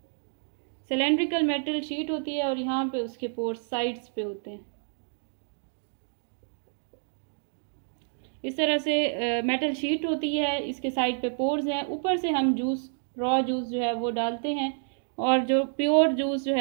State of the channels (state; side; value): silent; left; 59 dB below the other